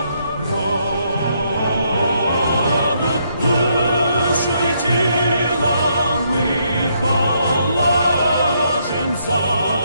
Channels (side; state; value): both; inverted; correlation -0.74